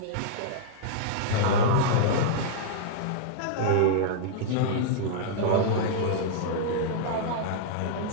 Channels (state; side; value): different; both; correlation -0.02